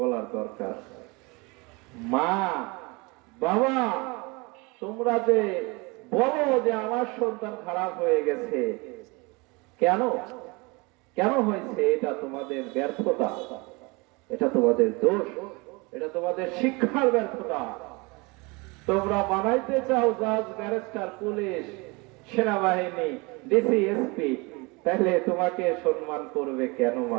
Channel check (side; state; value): left; quieter; 26.9 dB